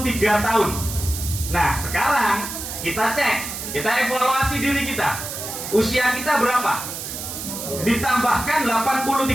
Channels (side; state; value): right; noise; hiss, 7 dB below the sound